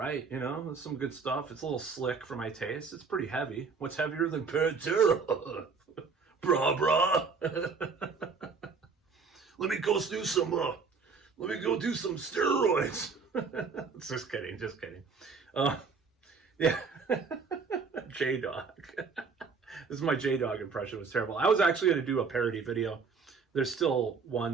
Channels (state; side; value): quieter; left; 5.0 dB